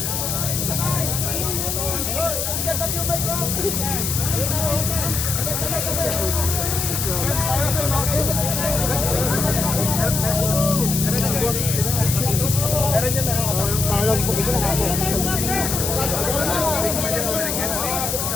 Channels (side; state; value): left; noise; hiss, 1 dB below the sound